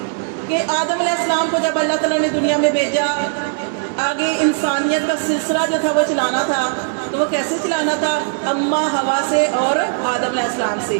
کہ آدم علیہ السلام کو جب اللہ تعالیٰ نے دنیا میں بھیجا آگے انسانیت کا سلسلہ جو تھا وہ چلانا تھا. تو وہ کیسے چلانا تھا؟ اماں ہوا سے اور آدم علیہ السلام سے.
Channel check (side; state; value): left; silent; 60 dB below the other